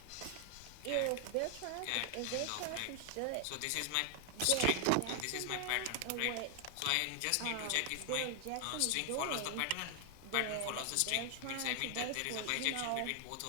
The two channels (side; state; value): both; different; correlation 0.00